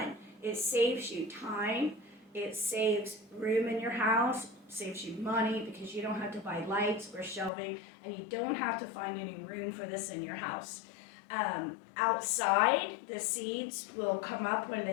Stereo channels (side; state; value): right; drops out; at 7.5 s